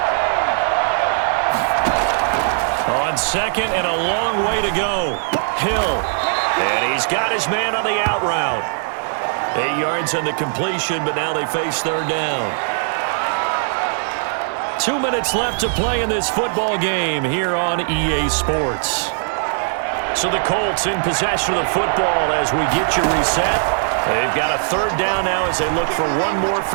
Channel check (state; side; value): silent; left; digital silence